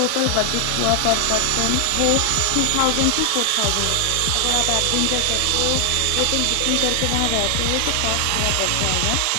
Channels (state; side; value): different; both; correlation 0.00